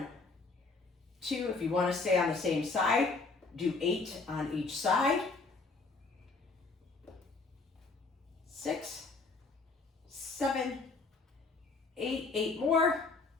2, if you wanna stay on the same side, do 8 on each side. 6, 7, 8, 8 more.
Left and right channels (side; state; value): right; quieter; 3.9 dB